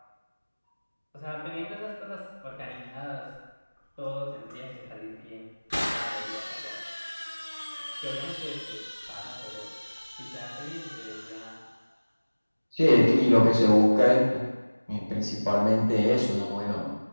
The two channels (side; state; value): both; inverted; correlation -1.00